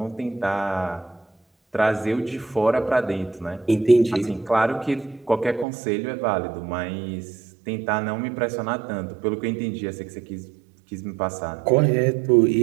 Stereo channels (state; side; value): drops out; left; at 5.7 s